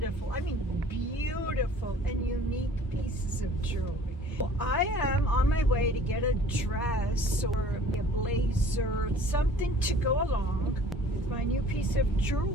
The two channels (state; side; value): normal; both; correlation 0.51